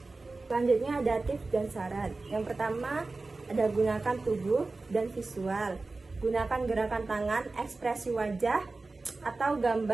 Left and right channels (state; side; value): quieter; left; 3.5 dB